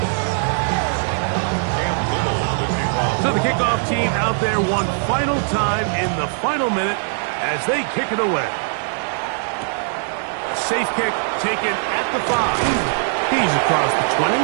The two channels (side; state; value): left; silent; digital silence